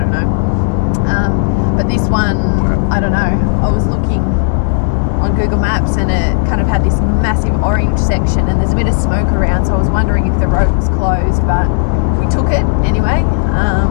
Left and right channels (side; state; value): right; silent; digital silence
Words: know. But this one, I don't know. I was looking on Google Maps and it kind of had this massive orange section and there's a bit of smoke around, so I was wondering if the road was closed, but we took it anyway.